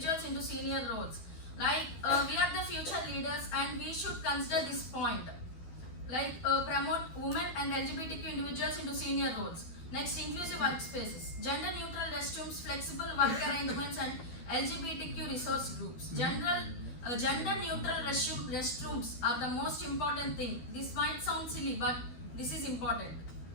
into senior roles. Like we are the future leaders and we should consider this point. Like promote women and LGBTQ individuals into senior roles. Next, inclusive workspaces, gender neutral restrooms, flexible work arrangements and LGBTQ resource groups. Gender neutral restrooms are the most important thing. This might sound silly but this is important.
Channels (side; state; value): right; late; 12 ms